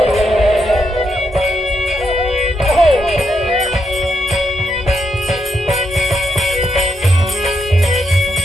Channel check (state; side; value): normal; both; correlation 0.81